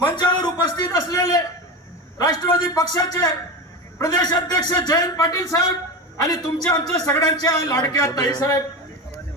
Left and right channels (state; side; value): normal; both; correlation 0.22